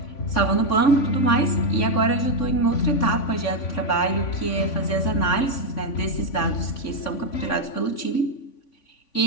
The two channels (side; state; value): right; late; 3.5 ms